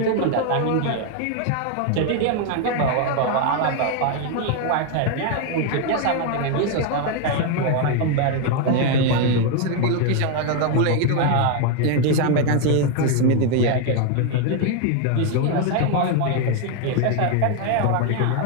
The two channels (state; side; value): different; both; correlation 0.01